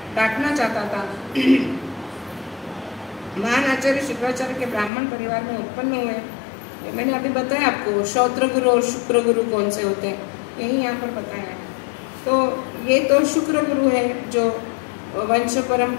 डांटना चाहता था। महान आचार्य शुक्राचार्य के ब्राह्मण परिवार में उत्पन्न हुए। मैंने अभी बताया आपको श्रौत्र गुरु और शुक्र गुरु कौन से होते हैं, यही यहाँ पर बताया है। तो ये तो शुक्र गुरु है जो वंश परम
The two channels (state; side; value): drops out; right; at 4.9 s